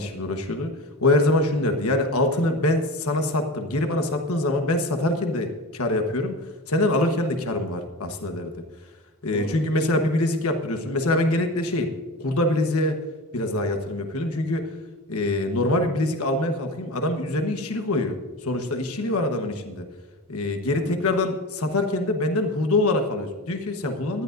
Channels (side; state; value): both; normal; correlation 0.30